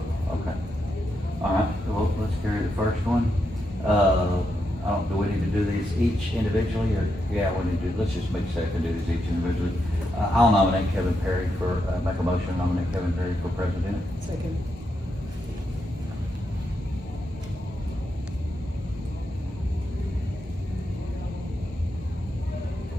okay. All right, well, let's carry the first one. Do we need to do these each individually, or, yeah, we need to, let's just make a second, do these each individually. I'll nominate Kevin Perry for, make a motion, to nominate Kevin Perry for president. Second.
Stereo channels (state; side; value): normal; both; correlation 0.83